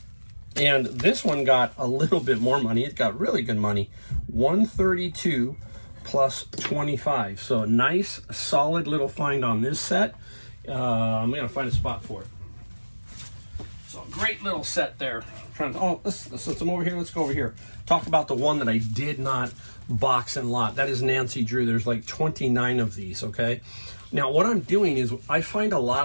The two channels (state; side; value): inverted; both; correlation -1.00